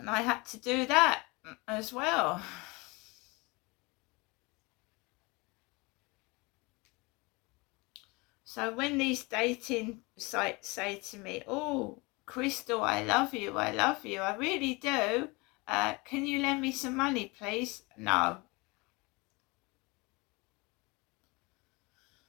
I had to do that as well. So when these dating sites say to me, "Oh, Crystal, I love you, I really do. Can you lend me some money, please?" No.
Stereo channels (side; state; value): right; quieter; 26.0 dB